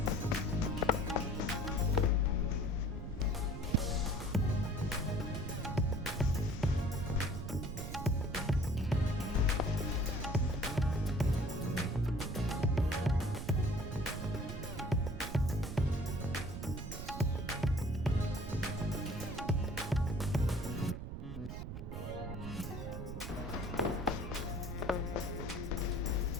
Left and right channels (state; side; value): noise; right; rumble, 7 dB below the sound